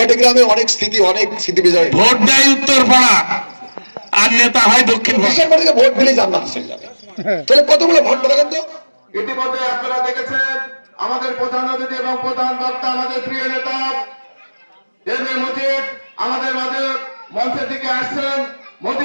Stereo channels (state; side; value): inverted; both; correlation -1.00